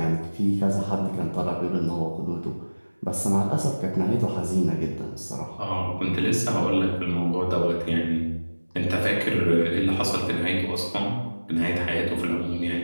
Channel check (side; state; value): both; inverted; correlation -1.00